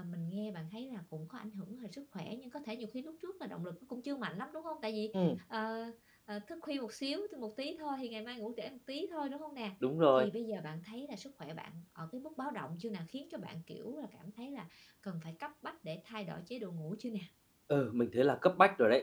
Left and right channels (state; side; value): identical; both; correlation 1.00